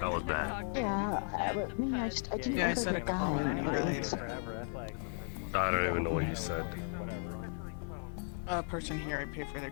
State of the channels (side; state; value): right; silent; 54 dB below the other